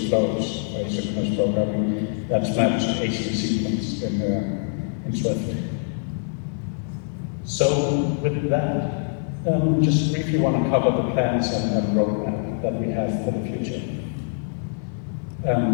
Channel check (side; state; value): right; silent; digital silence